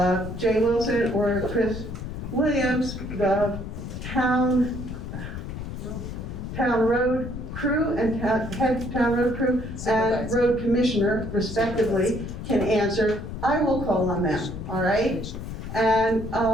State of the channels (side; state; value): left; noise; rumble, 8 dB below the sound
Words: Jay Wilson or Chris Williams, the town road crew and head town road crew and road commissioner, respectively, can answer, I will call on them, all right? And